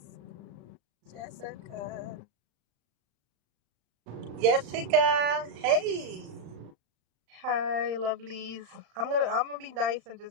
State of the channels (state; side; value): late; left; 35 ms